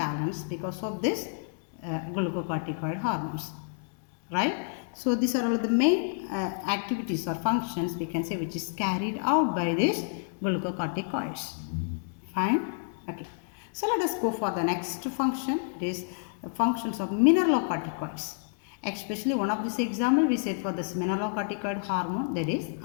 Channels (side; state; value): right; silent; digital silence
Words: because of this glucocorticoid hormones, right? So these are all the main activities or functions we can say which is carried out by these glucocorticoids. Fine? Okay. So let us go for the next function. It is the functions of mineralocorticoids. Especially one of this example we said for this mineralocorticoid hormone, that is